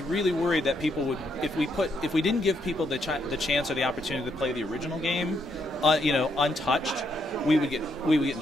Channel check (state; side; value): normal; both; correlation 0.75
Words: really worried that people would, if we didn't give people the chance or the opportunity to play the original game, you know, untouched, we would get in